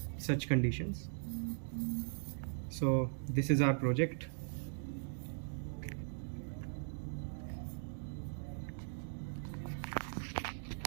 such conditions. So this is our project.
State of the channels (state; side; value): silent; left; digital silence